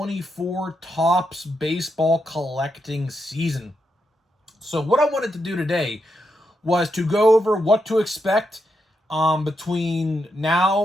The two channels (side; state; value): both; normal; correlation 0.83